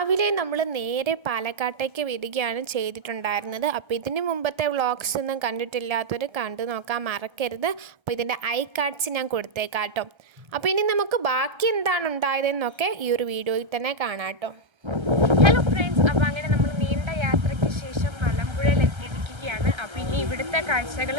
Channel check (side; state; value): left; late; 1.3 ms